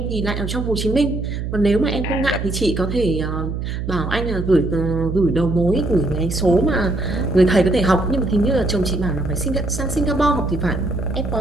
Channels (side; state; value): right; noise; hum, 4 dB below the sound